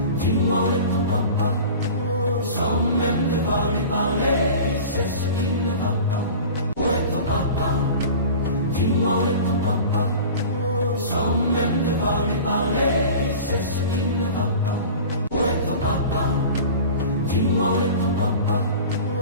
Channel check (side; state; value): both; inverted; correlation -0.38